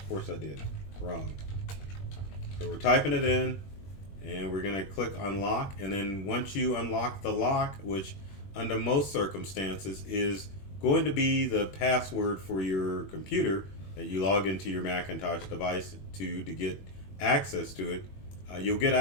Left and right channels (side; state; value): right; late; 21 ms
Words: course I did. Wrong. So we're typing it in and we're going to click unlock, and then once you unlock the lock, which under most circumstances is going to be the password for your computer that you log into your Macintosh device to get access to it, you'll get